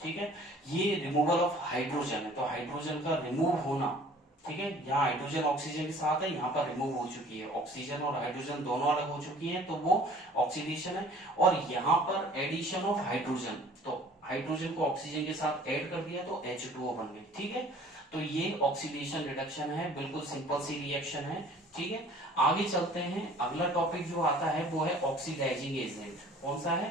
ठीक है, ये रिमूवल ऑफ हाइड्रोजन है, तो हाइड्रोजन का रिमूव होना, ठीक है, यहाँ हाइड्रोजन ऑक्सीजन के साथ है, यहाँ पर रिमूव हो चुकी है, ऑक्सीजन और हाइड्रोजन दोनों अलग हो चुकी हैं, तो वो ऑक्सीडेशन है। और यहाँ पर एडिशन ऑफ हाइड्रोजन, तो हाइड्रोजन को ऑक्सीजन के साथ ऐड कर दिया तो H2O बन गई। ठीक है, तो ये ऑक्सीडेशन रिडक्शन है, बिल्कुल सिंपल सी रिएक्शन है। ठीक है, आगे चलते हैं, अगला टॉपिक जो आता है वो है ऑक्सीडाइजिंग एजेंट। कौन सा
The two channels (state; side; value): normal; both; correlation 0.51